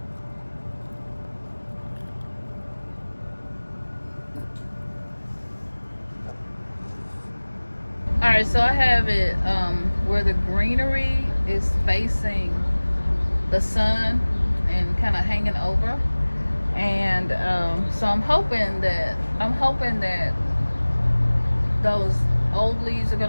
All right, so I have it where the greenery is facing the sun and kind of hanging over, and so I'm hoping that those old leaves are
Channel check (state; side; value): inverted; both; correlation -1.00